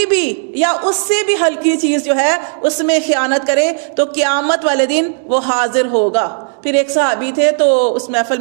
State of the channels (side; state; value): left; silent; digital silence